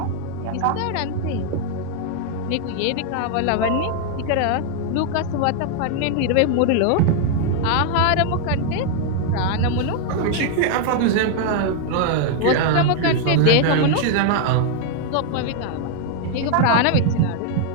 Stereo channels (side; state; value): both; different; correlation 0.00